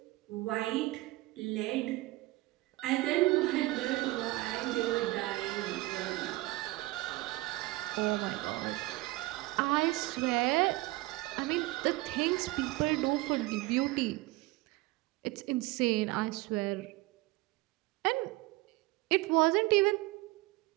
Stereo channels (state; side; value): quieter; left; 20.1 dB